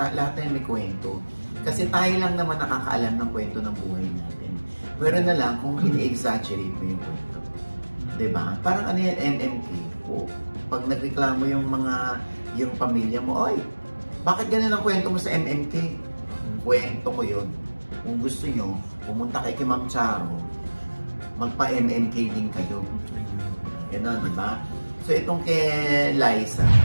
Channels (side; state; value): both; inverted; correlation -1.00